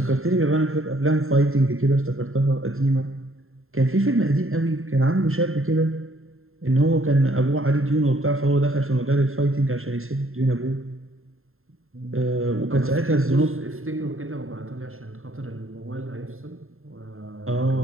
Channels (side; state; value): left; late; 0.61 ms